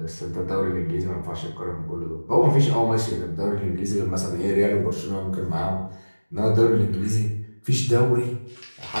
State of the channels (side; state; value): both; inverted; correlation -1.00